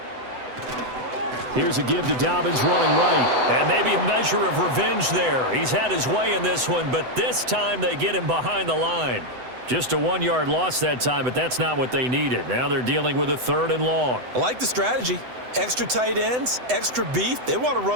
Here's a give to Dobbins running right. And maybe a measure of revenge there. He's had his way in this one, but this time they get him behind the line. Just a 1-yard loss that time, but that's not what they needed. Now they're dealing with a 3rd and long. I like the strategy. Extra tight ends, extra beef. They want to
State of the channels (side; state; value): left; late; 8.0 ms